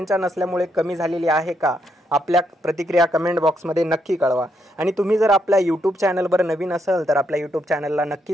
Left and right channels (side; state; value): both; normal; correlation 0.77